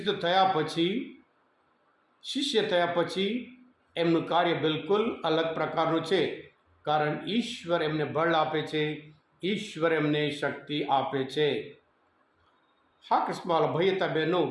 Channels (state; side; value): identical; both; correlation 1.00